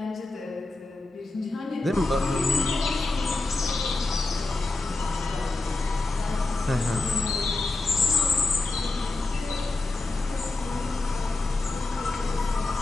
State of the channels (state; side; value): quieter; right; 3.1 dB